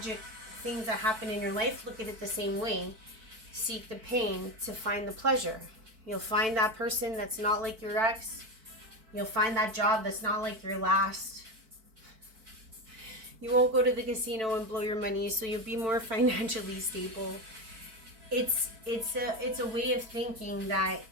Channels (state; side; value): late; left; 4.5 ms